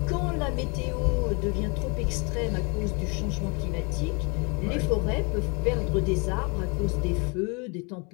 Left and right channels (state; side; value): quieter; right; 32.2 dB